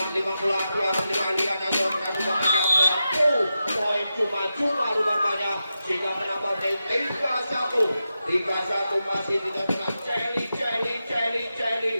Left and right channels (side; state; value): both; inverted; correlation -0.89